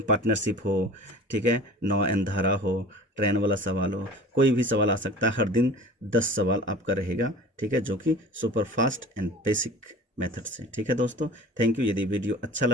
हो, ठीक है, नौ एन धारा हो, ट्रेन वाला सवाल हो, कोई भी सवाल आ सकता है। हर दिन 10 सवाल आपका रहेगा। ठीक है, जो कि super fast and basic method से। ठीक है दोस्तों, थैंक यू। यदि वीडियो अच्छा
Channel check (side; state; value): both; normal; correlation 0.41